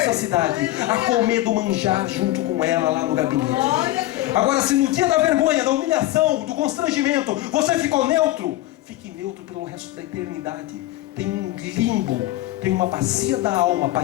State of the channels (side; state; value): right; quieter; 16.3 dB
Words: cidade, a comer do manjar junto com ela lá no gabinete. Agora, se no dia da vergonha, da humilhação, do constrangimento, você ficou neutro, fique neutro pelo resto da eternidade. Tem um limbo, tem uma bacia da alma para